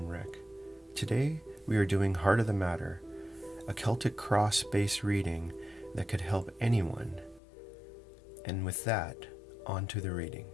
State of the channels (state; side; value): drops out; right; at 7.4 s